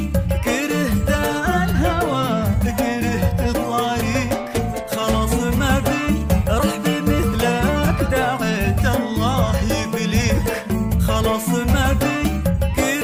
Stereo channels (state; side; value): identical; both; correlation 1.00